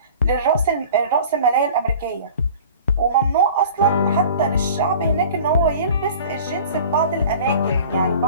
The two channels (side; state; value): both; inverted; correlation -0.43